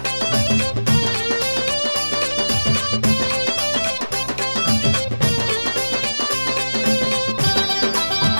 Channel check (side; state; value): both; inverted; correlation -1.00